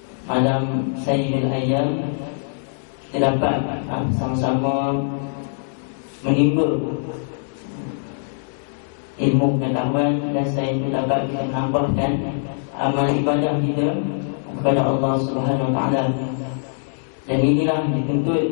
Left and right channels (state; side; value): silent; right; digital silence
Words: malam Sayyidul Ayyam, kita dapat sama-sama menimba ilmu pengetahuan, dan saya pun dapat menambahkan amal ibadah kita kepada Allah Subhanahu wa taala. Dan inilah dituntut